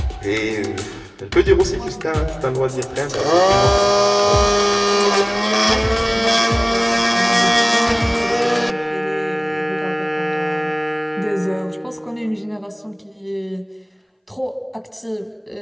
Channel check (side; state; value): both; identical; correlation 1.00